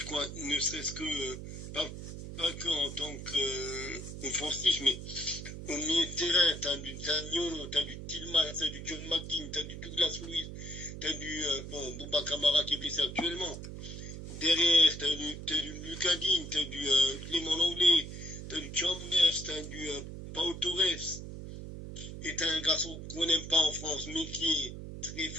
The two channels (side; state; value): right; noise; hum, 9 dB below the sound